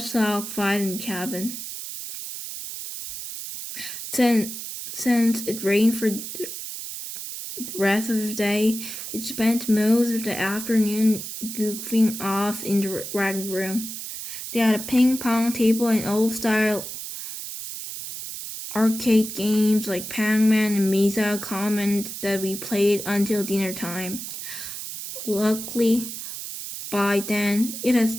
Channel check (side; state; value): right; noise; hiss, 8 dB below the sound